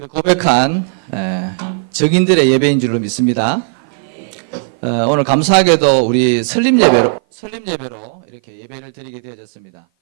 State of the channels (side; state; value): left; silent; 56 dB below the other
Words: 고백한 증인들의 예배인 줄로 믿습니다. 오늘 감사하게도 우리 설립 예배로 이렇게 예배를 드리게 되어졌습니다.